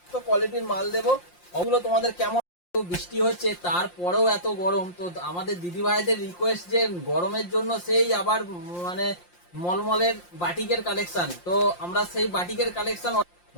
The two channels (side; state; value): right; late; 5.7 ms